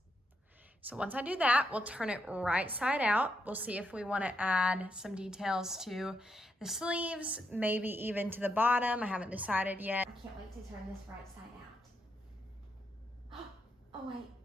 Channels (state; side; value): normal; both; correlation 0.80